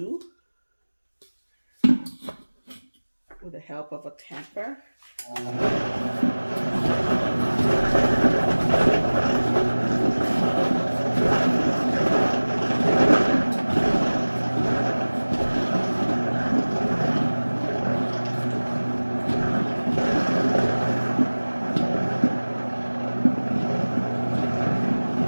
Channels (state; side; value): inverted; both; correlation -1.00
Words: with the help of a tamper.